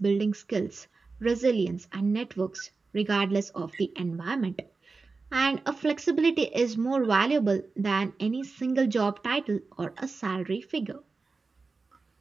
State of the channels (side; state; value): left; quieter; 4.1 dB